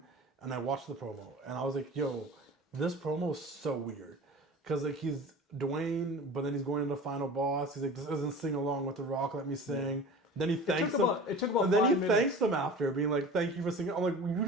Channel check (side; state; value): both; normal; correlation 0.38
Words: and I watched the promo and I was like, "Yo, this promo is so weird," because like he's Dwayne, but then he's going into Final Boss. He's like, "This isn't sing along with The Rock. Let me sing." Then he thanks them. It took about and then he 5 minutes. thanks them after, being like, "Thank you for singing." I'm like, "You